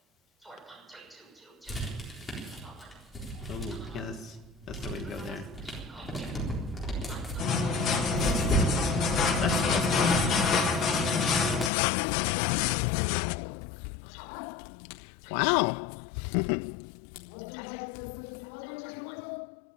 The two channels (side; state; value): right; drops out; at 11.7 s